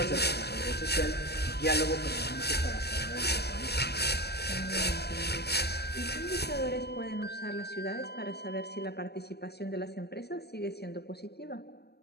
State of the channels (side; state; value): right; late; 0.47 ms